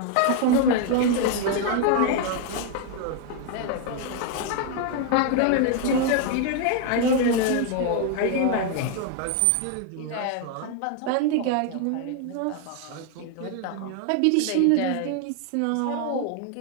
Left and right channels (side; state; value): both; different; correlation 0.01